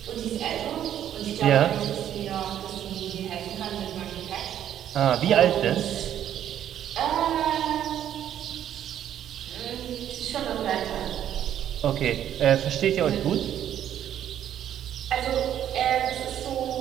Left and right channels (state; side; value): quieter; left; 10.6 dB